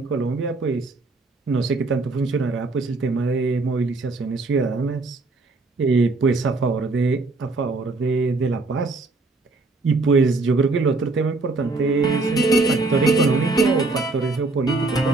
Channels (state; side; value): quieter; left; 3.5 dB